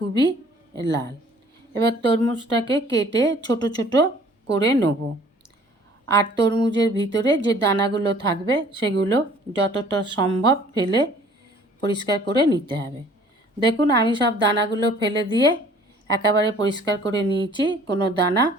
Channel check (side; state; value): both; normal; correlation 0.54